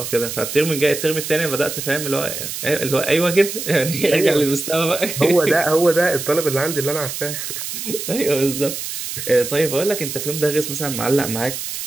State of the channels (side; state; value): right; noise; hiss, 6 dB below the sound